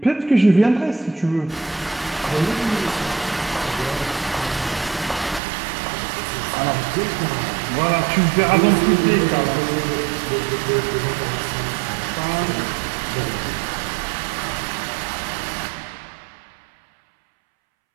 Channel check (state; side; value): drops out; left; at 5.4 s